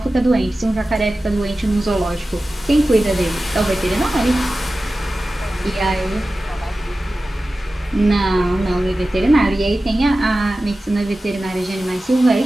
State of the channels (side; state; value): both; normal; correlation 0.95